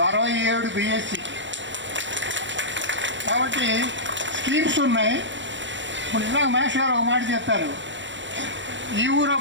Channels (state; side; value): late; left; 0.54 ms